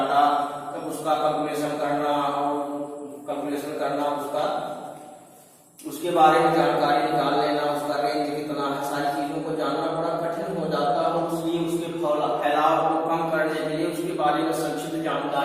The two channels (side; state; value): both; identical; correlation 1.00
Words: तब उसका कैलकुलेशन करना उसका उसके बारे में जानकारी निकाल लेना, उसका रेंज कितना है, सारी चीजों को जानना बड़ा कठिन हो जाता है। इसलिए उसके फैलाव को कम करने के लिए, उसके बारे में संक्षिप्त